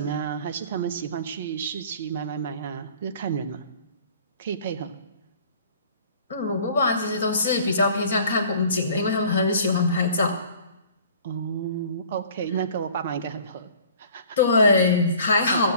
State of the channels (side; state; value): both; inverted; correlation -0.50